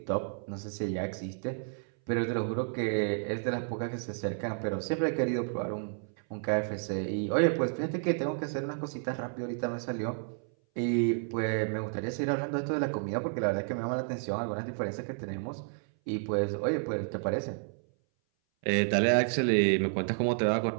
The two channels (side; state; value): left; silent; 57 dB below the other